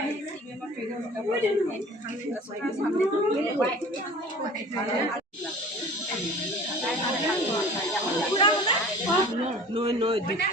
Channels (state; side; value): normal; both; correlation 0.44